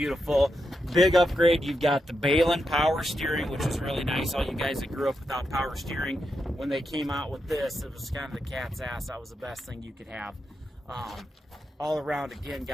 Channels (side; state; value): both; normal; correlation 0.85